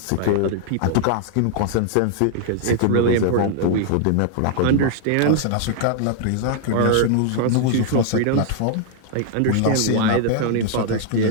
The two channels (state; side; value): different; both; correlation 0.00